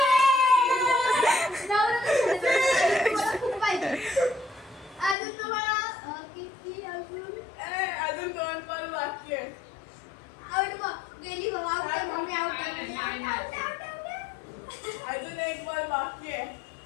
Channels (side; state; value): right; drops out; at 5.2 s